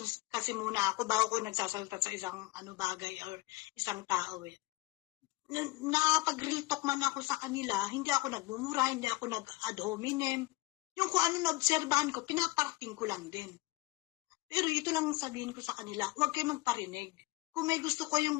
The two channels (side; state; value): right; quieter; 21.0 dB